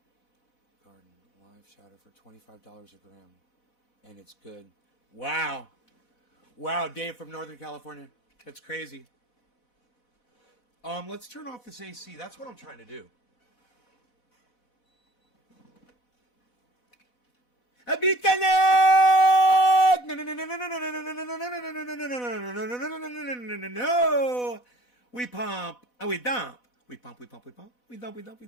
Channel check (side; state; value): right; late; 4.1 ms